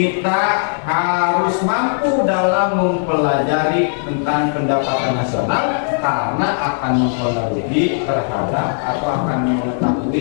harus mampu dalam mempelajari tentang pendapatan nasional karena akan mempengaruhi terhadap atau akan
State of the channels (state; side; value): silent; right; digital silence